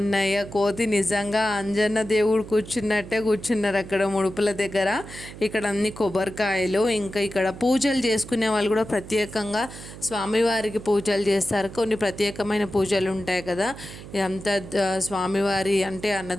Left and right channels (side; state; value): right; noise; hum, 14 dB below the sound